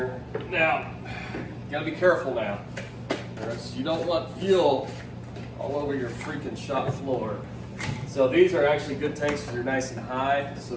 Now, you gotta be careful now. You don't want fuel all over your freaking shop floor. So these are actually good tanks because they're nice and high, so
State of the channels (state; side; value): identical; both; correlation 1.00